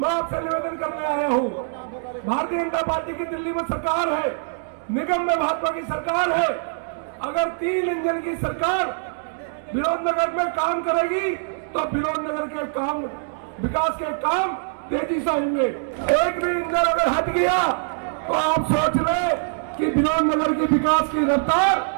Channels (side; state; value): left; silent; 63 dB below the other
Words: आपसे निवेदन करने आया हूँ, भारतीय जनता पार्टी की दिल्ली में सरकार है, निगम में भाजपा की सरकार है। अगर 3 इंजन की सरकार विनोद नगर में काम करेगी, तो विनोद नगर के काम, विकास के काम तेजी से होंगे। एक भी इंजन अगर हट गया, तो आप सोच रहे कि विनोद नगर के विकास की रफ्तार